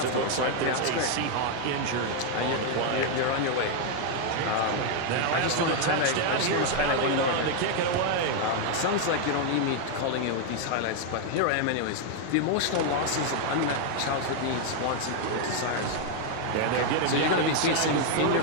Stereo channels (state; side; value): different; both; correlation 0.00